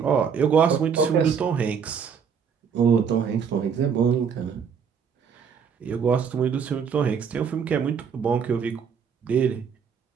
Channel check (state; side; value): quieter; left; 6.8 dB